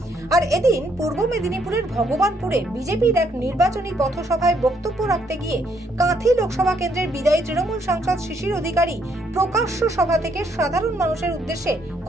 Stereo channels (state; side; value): normal; both; correlation 0.71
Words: আর এদিন পূর্ব মেদিনীপুরের ভগবানপুরে বিজেপির এক নির্বাচনী পথসভায় বক্তব্য রাখতে গিয়ে কাঁথি লোকসভা কেন্দ্রের বিদায়ী তৃণমূল সাংসদ শিশির অধিকারী প্রকাশ্য সভা থেকে সাধারণ মানুষের উদ্দেশ্যে